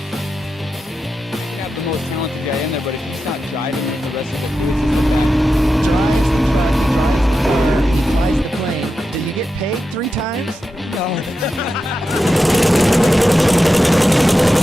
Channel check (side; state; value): both; normal; correlation 0.90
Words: Have the most talented guy in there, but if he's not driving it, the rest of the crew is just back. Drives the truck, drives the car, he flies the plane. Did you get paid 3 times? No.